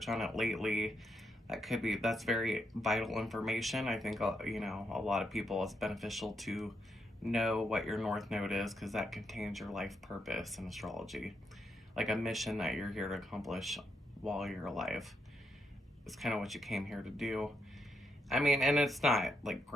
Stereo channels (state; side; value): normal; both; correlation 0.80